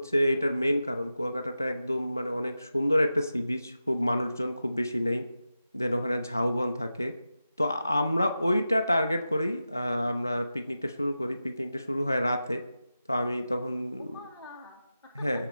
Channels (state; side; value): inverted; both; correlation -0.92